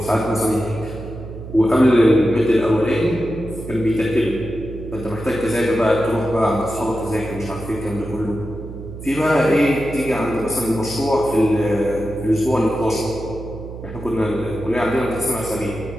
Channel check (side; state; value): right; noise; hum, 11 dB below the sound